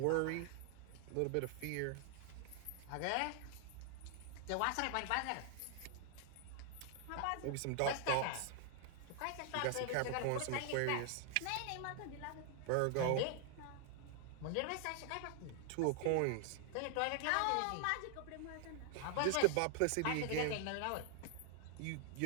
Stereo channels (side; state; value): both; different; correlation 0.00